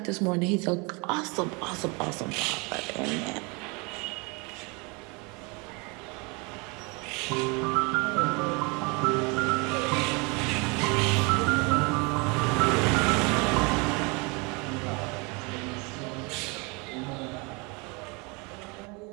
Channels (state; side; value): quieter; left; 29.7 dB